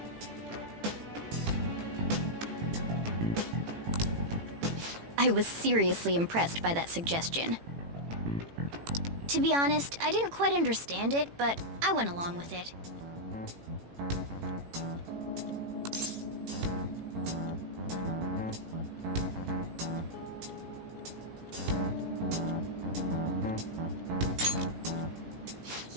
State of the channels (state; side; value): late; left; 18 ms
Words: I was seriously impressed by that suggestion. To be honest, I didn't quite understand it, but I went along with it.